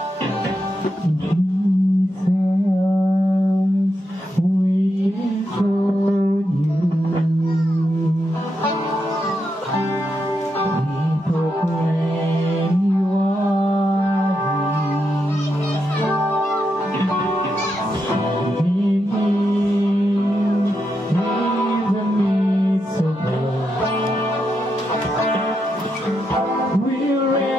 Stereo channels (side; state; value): both; normal; correlation 0.84